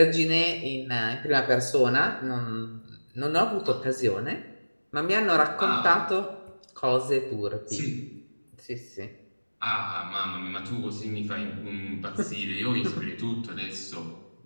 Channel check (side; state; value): both; inverted; correlation -1.00